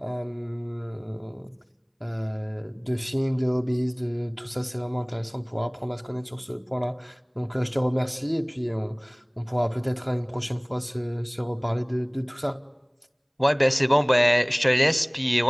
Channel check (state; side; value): identical; both; correlation 1.00